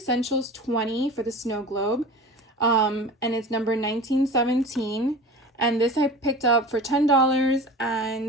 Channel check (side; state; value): both; normal; correlation 0.36